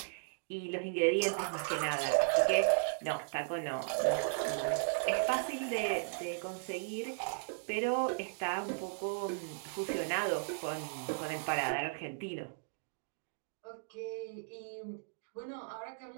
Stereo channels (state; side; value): silent; left; digital silence